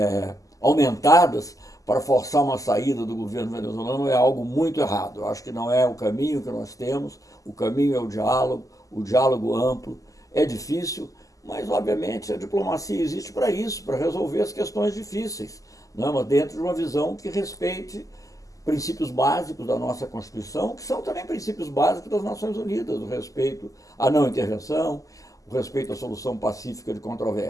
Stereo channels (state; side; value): late; right; 0.17 ms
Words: aumentadas para forçar uma saída do governo venezuelano é algo muito errado. Eu acho que não é o caminho que nós temos. O caminho é o diálogo amplo. É difícil, mas obviamente a diplomacia existe para isso, para resolver as questões difíceis, né? Mas dentro de uma visão que respeite princípios básicos da nossa Constituição, que são também princípios básicos das Nações Unidas, o respeito à não intervenção, o respeito à solução pacífica de